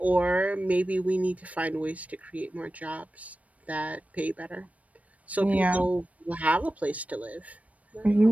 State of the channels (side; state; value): left; late; 0.068 ms